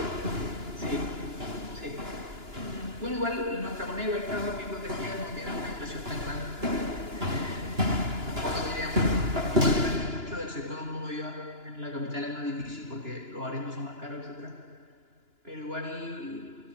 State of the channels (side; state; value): left; late; 2.9 ms